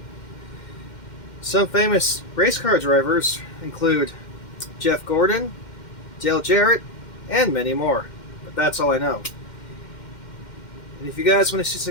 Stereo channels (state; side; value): late; right; 2.1 ms